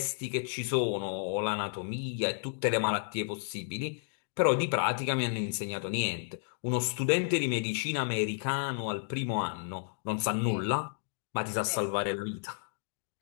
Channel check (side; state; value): right; silent; digital silence